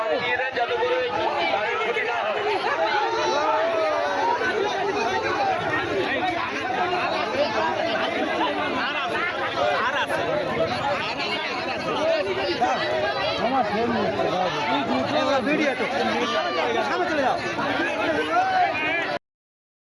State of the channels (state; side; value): identical; both; correlation 1.00